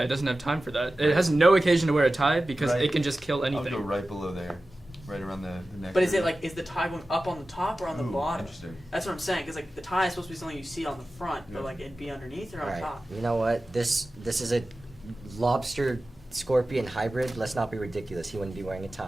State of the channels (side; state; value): both; normal; correlation 0.95